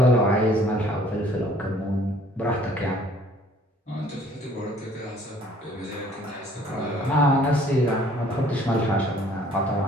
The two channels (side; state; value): both; normal; correlation 0.57